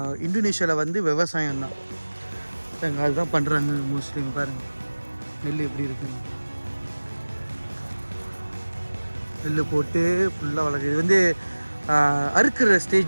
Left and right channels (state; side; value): inverted; both; correlation -1.00